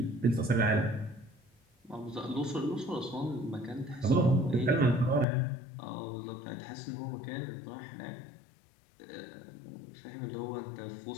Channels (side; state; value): right; drops out; at 5.2 s